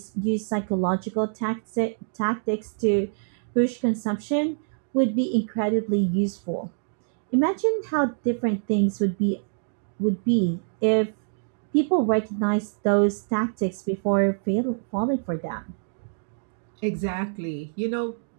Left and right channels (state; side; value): silent; left; digital silence